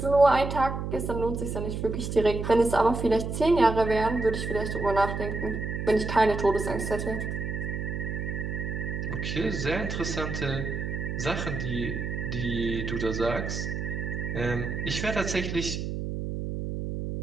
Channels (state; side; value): noise; right; hum, 4 dB below the sound